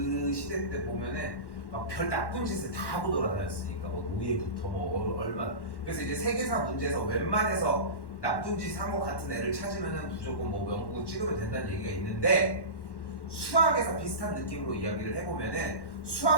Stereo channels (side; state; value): right; late; 1.1 ms